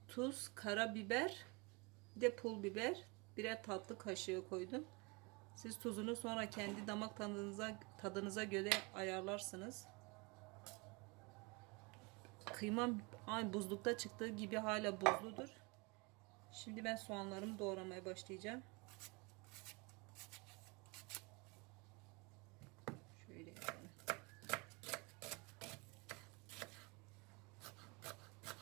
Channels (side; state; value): left; quieter; 28.7 dB